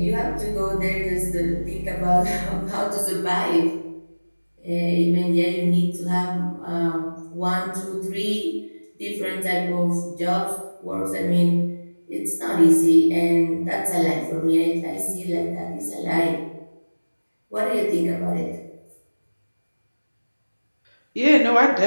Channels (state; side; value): inverted; both; correlation -1.00